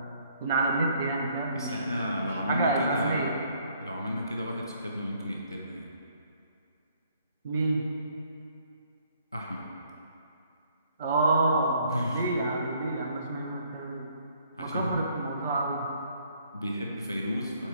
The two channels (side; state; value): both; inverted; correlation -0.65